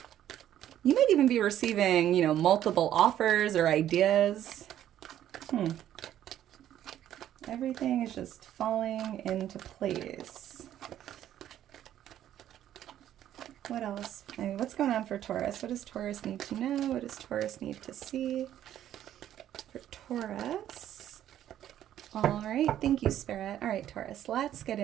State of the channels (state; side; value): quieter; left; 11.5 dB